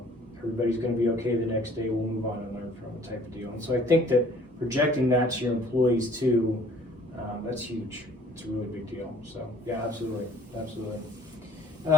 everybody's going to be okay the next day. We'll move on and learn from it type of deal. And so I think that projecting that to your employees too, that's huge. It's a really big deal. So yeah, absolutely.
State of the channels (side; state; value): both; normal; correlation 0.54